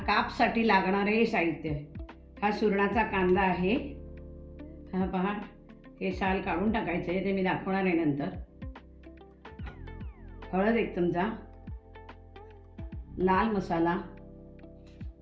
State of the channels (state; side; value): identical; both; correlation 1.00